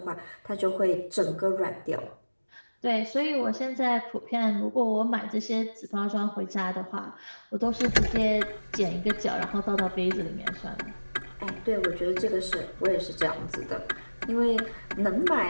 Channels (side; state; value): both; inverted; correlation -1.00